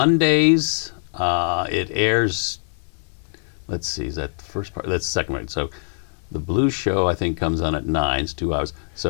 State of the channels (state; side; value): silent; right; digital silence